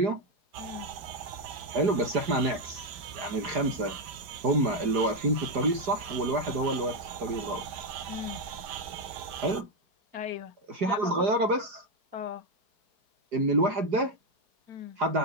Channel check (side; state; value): left; late; 5.1 ms